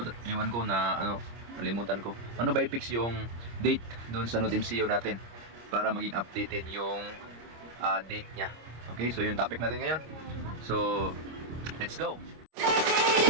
Iwan ko na nalimutan ko. Ano ba i-fix yung date doon sa Node MCU natin para maging updated yung date niya. Okay, so yung topic natin ngayon. So let's go.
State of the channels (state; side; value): late; left; 26 ms